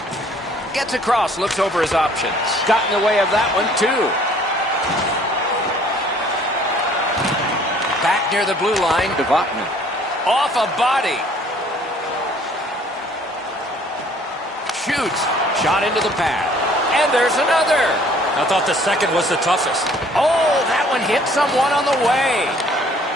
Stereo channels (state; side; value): normal; both; correlation 0.57